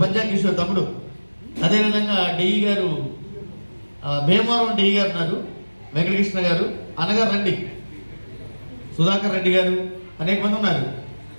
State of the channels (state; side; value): inverted; both; correlation -1.00